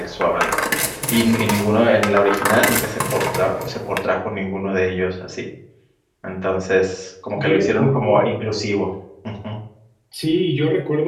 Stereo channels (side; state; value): both; identical; correlation 1.00